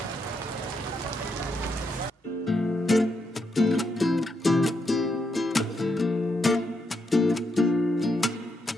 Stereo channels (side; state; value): both; normal; correlation 0.80